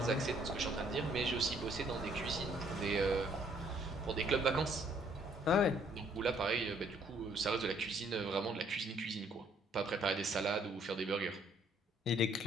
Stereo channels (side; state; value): both; normal; correlation 0.65